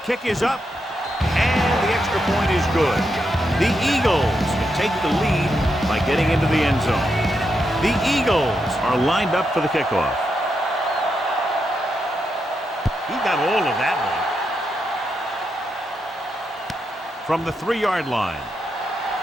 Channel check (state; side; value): normal; both; correlation 0.83